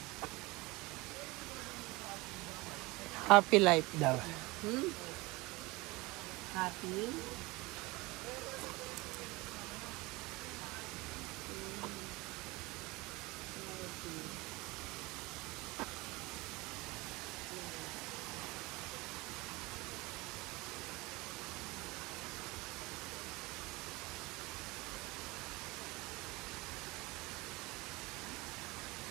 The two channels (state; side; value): quieter; left; 23.0 dB